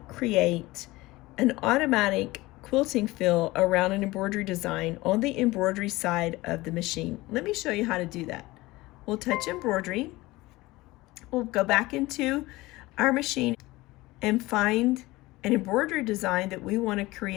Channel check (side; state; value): right; quieter; 19.9 dB